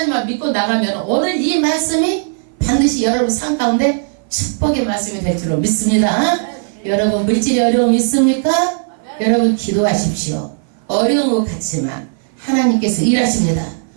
믿고 나가면 오늘 이 말씀이 반드시 여러분 삶 가운데 축복의 말씀이 될 줄로 믿습니다. 여러분 물질이 어려움 있습니까? 여러분 기도하십시오. 어려운 것 같지만 하나님께서 일하십니다.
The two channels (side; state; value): left; silent; 58 dB below the other